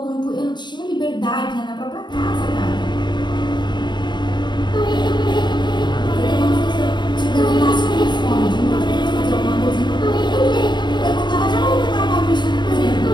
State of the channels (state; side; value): late; right; 0.22 ms